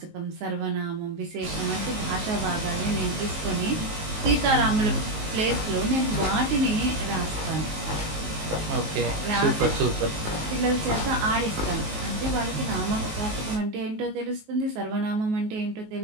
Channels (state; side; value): late; left; 19 ms